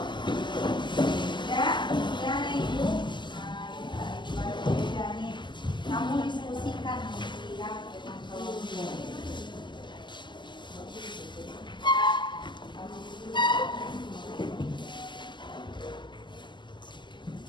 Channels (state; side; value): late; right; 0.22 ms